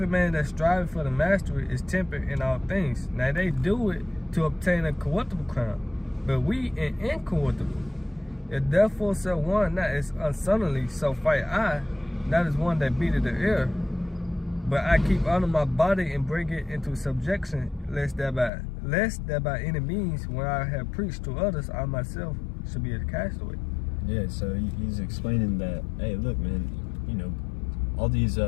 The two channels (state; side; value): drops out; right; at 18.5 s